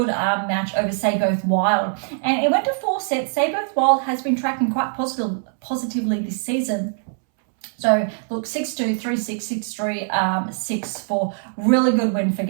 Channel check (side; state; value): left; silent; 64 dB below the other